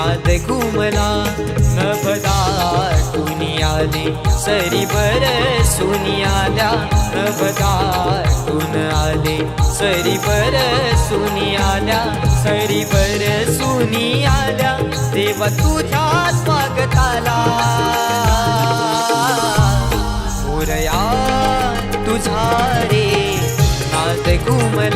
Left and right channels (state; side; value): identical; both; correlation 1.00